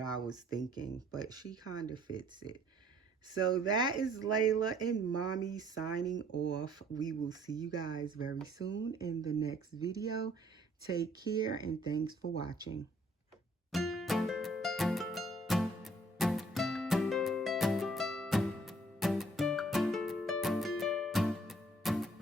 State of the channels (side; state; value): both; normal; correlation 0.60